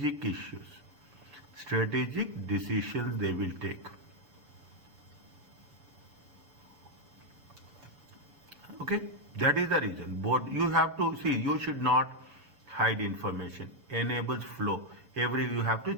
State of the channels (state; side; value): late; left; 7.0 ms